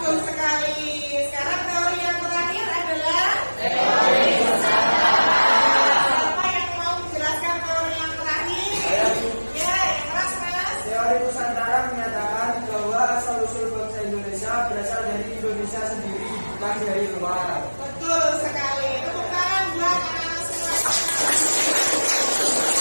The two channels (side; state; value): both; inverted; correlation -1.00